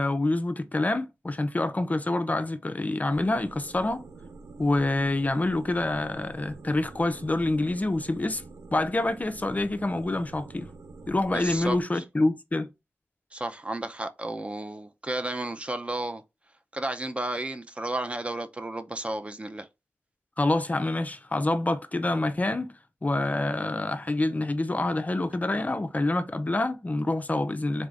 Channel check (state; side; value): normal; both; correlation 0.91